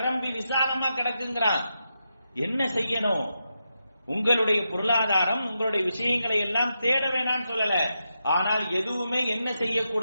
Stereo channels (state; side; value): inverted; both; correlation -0.86